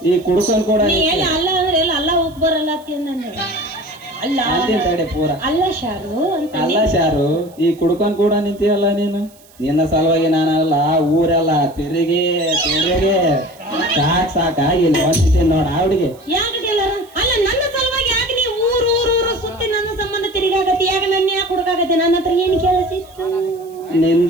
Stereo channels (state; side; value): noise; right; hiss, 27 dB below the sound